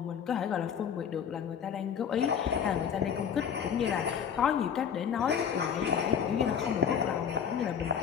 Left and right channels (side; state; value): right; quieter; 7.7 dB